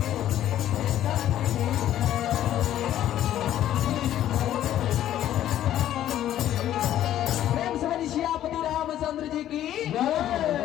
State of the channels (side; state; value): right; quieter; 12.1 dB